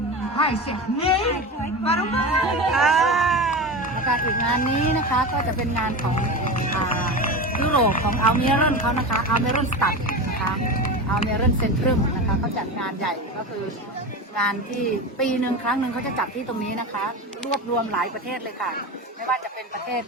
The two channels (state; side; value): normal; both; correlation 0.25